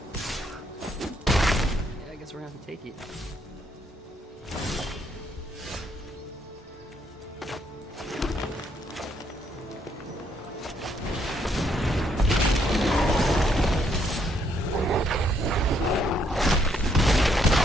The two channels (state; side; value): normal; both; correlation 0.72